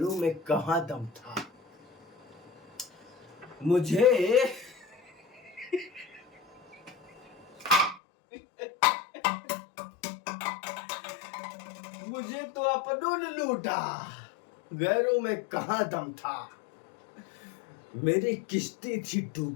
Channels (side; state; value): right; drops out; at 8.0 s